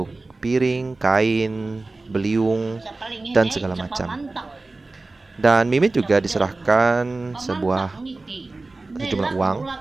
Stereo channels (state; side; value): quieter; left; 3.3 dB